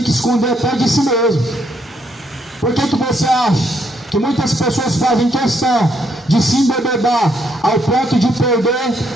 que esconder até de si mesmo. Por que você acha que muitas pessoas fazem questão de se embebedar ao ponto de perder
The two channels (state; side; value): normal; both; correlation 0.73